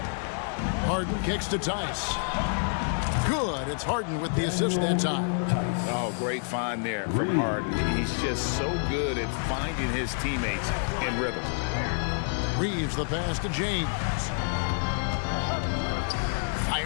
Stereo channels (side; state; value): right; silent; 58 dB below the other